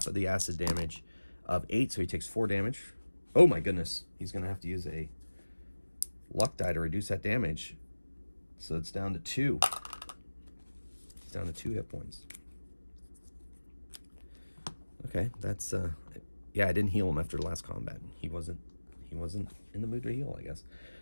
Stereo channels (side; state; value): both; inverted; correlation -1.00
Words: of the acid damage of 8, so he takes 4 damage. Oh my goodness. He's going to have to use a luck die to reduce that damage. So it's down to 2. It's down to 2 hit points. Okay, that's... yeah, I didn't heal him after the last combat. He wasn't in the mood to heal, I guess.